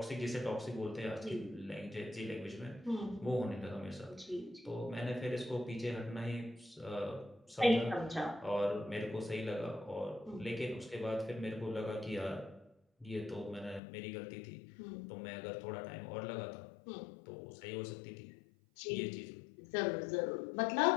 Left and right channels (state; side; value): drops out; right; at 13.8 s